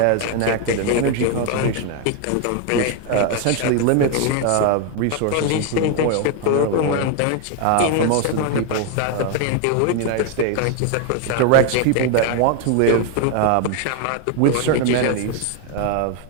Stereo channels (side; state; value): both; different; correlation 0.01